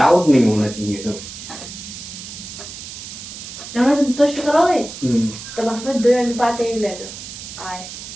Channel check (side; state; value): right; noise; hiss, 11 dB below the sound